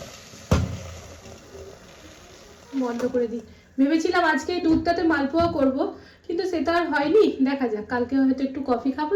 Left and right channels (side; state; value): both; identical; correlation 1.00